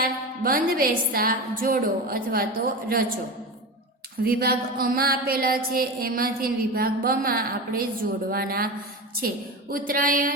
બંધ બેસતા જોડો અથવા તો રચો. વિભાગ અમાં આપેલા છે, એમાંથી વિભાગ બમાં આપણે જોડવાના છે.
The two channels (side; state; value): both; normal; correlation 0.24